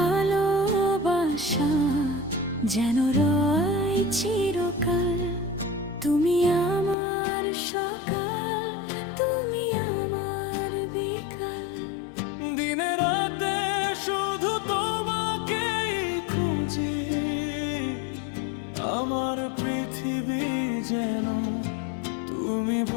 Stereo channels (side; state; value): right; drops out; at 7.0 s